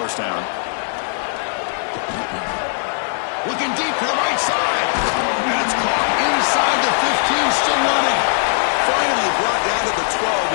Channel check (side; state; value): right; silent; 61 dB below the other